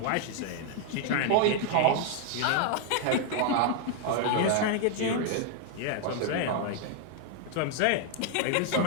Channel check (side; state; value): both; different; correlation 0.00